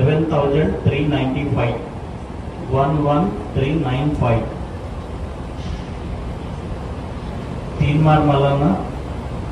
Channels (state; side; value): identical; both; correlation 1.00